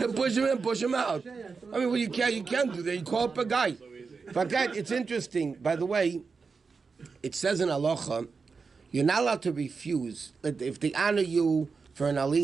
Push him in, push him out. I mean, you can't do that. You call up a guy. But it's interesting. By the way, it says in halacha, You're not allowed to refuse. If they honor you for an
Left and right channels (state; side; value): quieter; left; 4.9 dB